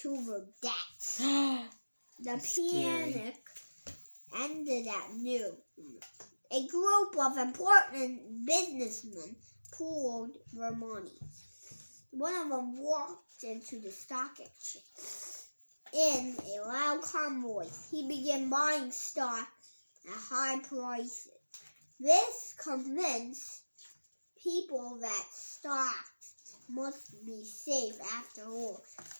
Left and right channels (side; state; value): both; inverted; correlation -1.00